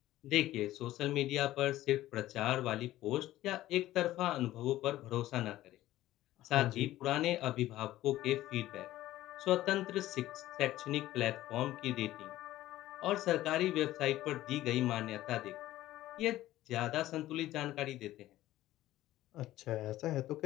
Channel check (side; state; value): right; quieter; 15.1 dB